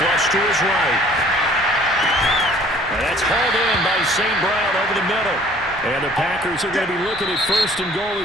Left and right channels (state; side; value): normal; both; correlation 0.54